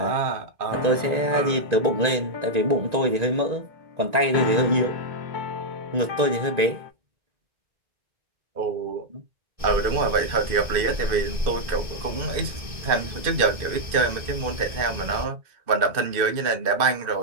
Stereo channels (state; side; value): late; left; 1.9 ms